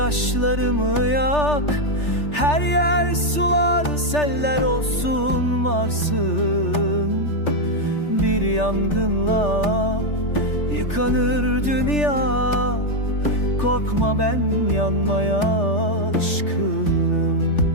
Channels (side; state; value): right; late; 3.4 ms